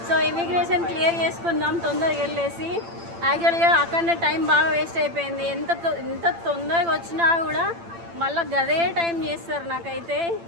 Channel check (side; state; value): left; late; 8.8 ms